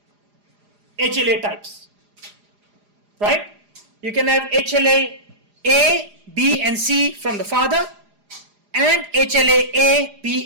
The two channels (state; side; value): late; left; 4.9 ms